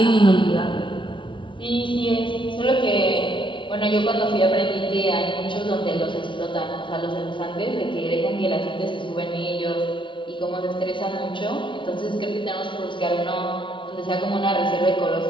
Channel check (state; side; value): late; right; 0.24 ms